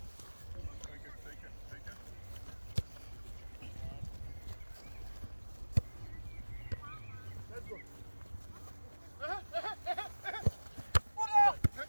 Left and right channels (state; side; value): inverted; both; correlation -1.00